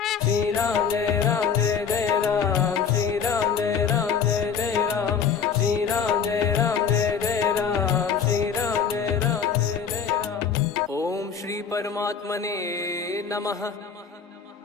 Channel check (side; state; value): right; quieter; 6.7 dB